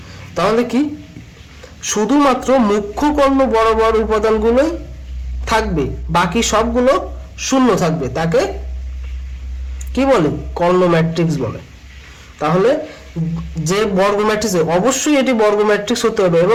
তাহলে কি শুধুমাত্র মুখ্য কর্ণ বরাবর উপাদানগুলোই থাকবে, বাকি সবগুলো শূন্য থাকবে, তাকে কি বলে? কর্ণ ম্যাট্রিক্স বলে। তাহলে যে বর্গ ম্যাট্রিক্স, অবশ্যই এটি বর্গ ম্যাট্রিক্স হতে হবে,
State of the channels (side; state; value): both; identical; correlation 1.00